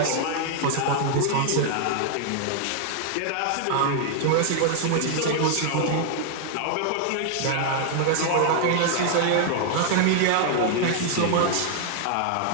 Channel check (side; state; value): both; different; correlation 0.00